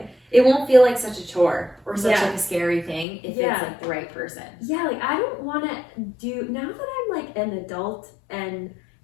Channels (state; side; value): drops out; right; at 3.1 s